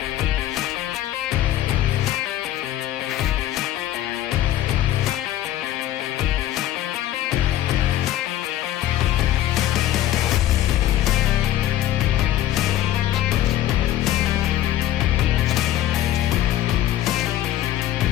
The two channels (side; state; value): right; quieter; 13.1 dB